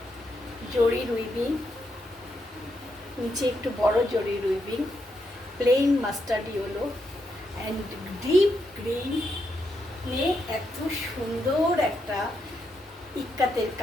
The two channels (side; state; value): both; normal; correlation 0.81